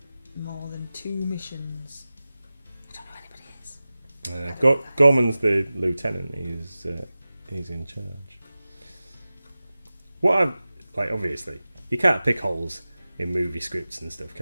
more than 2 missions. I don't know who anybody is. Gorman's the lieutenant. He's in charge. What I'm like, obviously, you can't pick holes in movie scripts and stuff,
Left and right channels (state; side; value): inverted; both; correlation -0.96